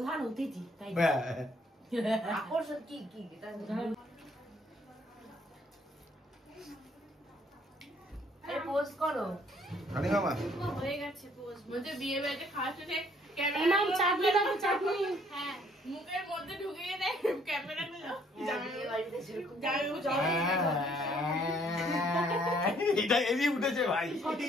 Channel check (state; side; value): normal; both; correlation 0.63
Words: অতিথি, তাই আকর্ষণ কি কি পোস্ট করো। রানী মামা হয়ে গেছে পোজ। বলতে বিয়ে বাড়িতে খাওয়ার সাথে এমাম চাটনি দাও, চাটনি। হ্যাঁ, মুখের মধ্যে ঢুকিয়ে দেয় ক্যামেরা গুলো। এটা এমনি উঠেছে ভাই,